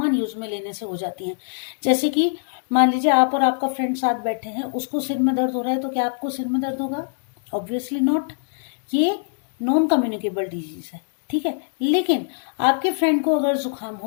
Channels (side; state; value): right; silent; digital silence